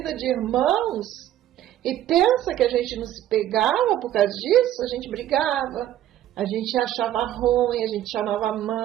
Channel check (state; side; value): quieter; left; 12.5 dB